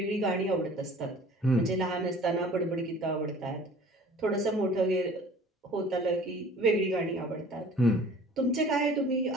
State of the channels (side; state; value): both; normal; correlation 0.48